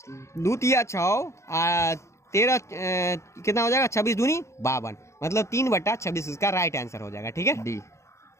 2 तिया 6 13 कितना हो जाएगा 26 दूनी 52, मतलब 3/26 इसका राइट आंसर हो जाएगा। ठीक है डी।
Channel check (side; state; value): right; late; 0.14 ms